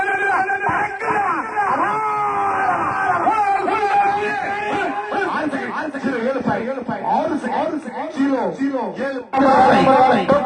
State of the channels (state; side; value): identical; both; correlation 1.00